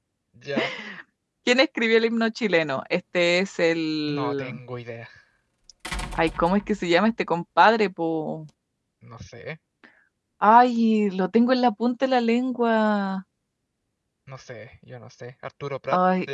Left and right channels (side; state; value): both; identical; correlation 1.00